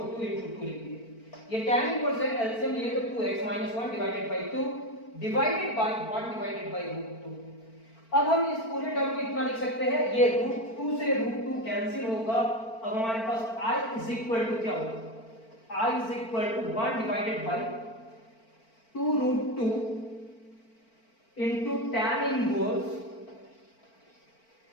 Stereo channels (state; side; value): late; right; 4.4 ms